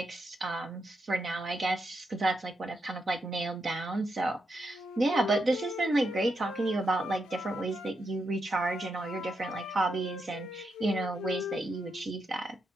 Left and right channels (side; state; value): both; normal; correlation 0.82